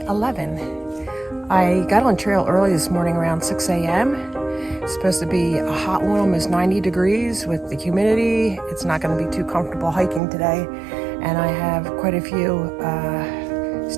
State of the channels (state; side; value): drops out; left; at 10.2 s